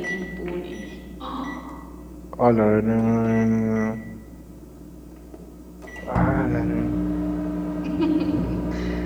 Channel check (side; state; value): both; identical; correlation 1.00